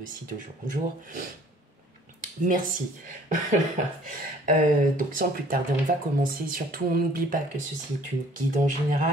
aussi de jour en jour. Merci. Donc sans plus tarder, on va commencer. Surtout, on n'oublie pas que ceci est une guide en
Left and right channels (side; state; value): both; normal; correlation 0.55